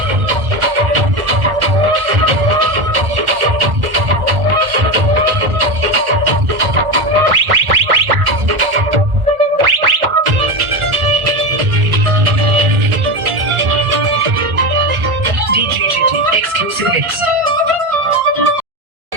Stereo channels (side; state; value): left; late; 1.9 ms